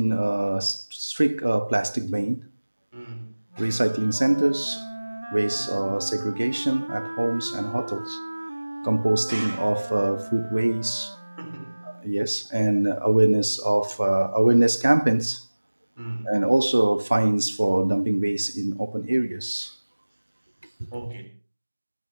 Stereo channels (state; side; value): inverted; both; correlation -1.00